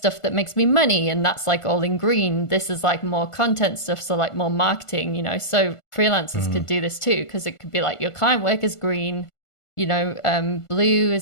that makes me money, and that's like all in green. This is like more content stuff, so like more marketing, you know. So freelancers could do this too, because it could be like your client work is green, you know, blue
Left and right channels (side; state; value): right; late; 1.5 ms